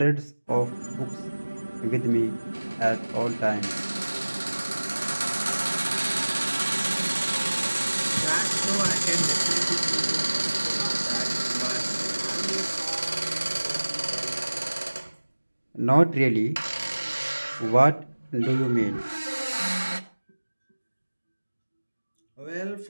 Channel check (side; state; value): both; inverted; correlation -1.00